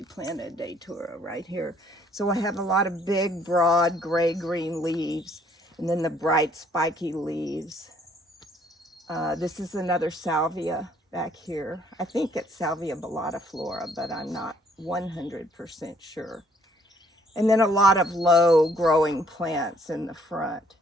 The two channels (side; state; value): both; normal; correlation 0.64